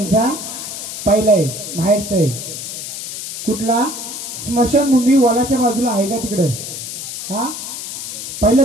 पहिला आहे माहेरचा आहे कुठला स्मशानभूमी वॉलाच्या बाजूला आहे का तिकडं हा पहिलं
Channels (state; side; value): noise; left; hiss, 7 dB below the sound